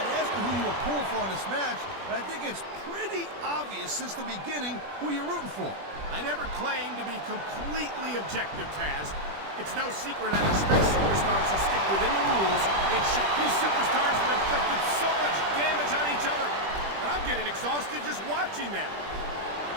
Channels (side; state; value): left; late; 20 ms